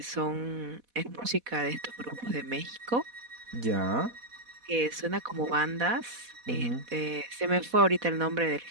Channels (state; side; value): late; left; 4.1 ms